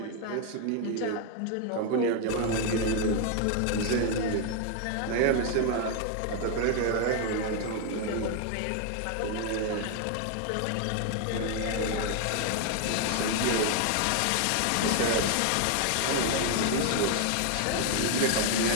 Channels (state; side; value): different; both; correlation 0.01